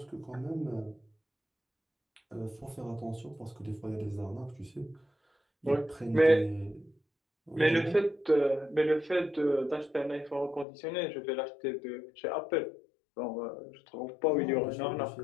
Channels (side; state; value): right; drops out; at 10.7 s